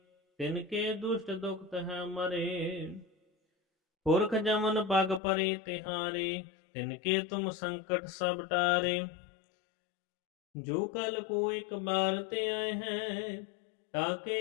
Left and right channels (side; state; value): right; drops out; at 5.2 s